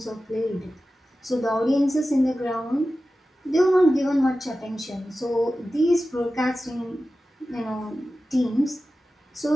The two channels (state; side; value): normal; both; correlation 0.94